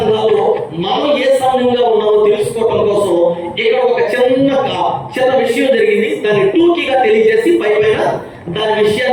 మనం ఏ సంఘంగా ఉన్నామో తెలుసుకోవడం కోసం ఇక్కడ ఒక చిన్న విషయం జరిగింది. దాన్ని టూకీగా తెలియజేసి పైన దాని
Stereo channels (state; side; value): identical; both; correlation 1.00